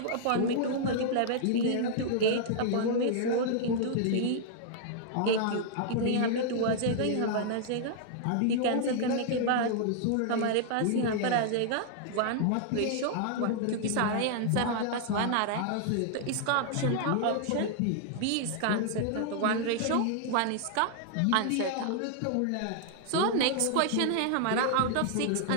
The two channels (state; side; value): different; both; correlation -0.01